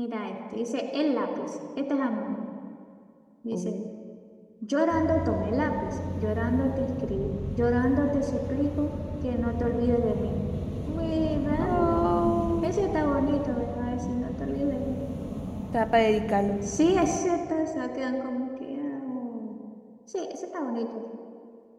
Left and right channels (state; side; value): identical; both; correlation 1.00